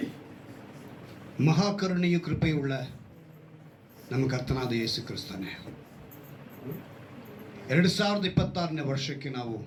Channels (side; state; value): both; identical; correlation 1.00